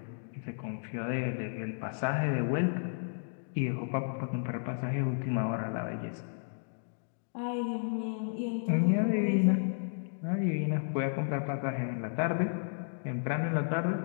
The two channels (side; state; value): right; silent; digital silence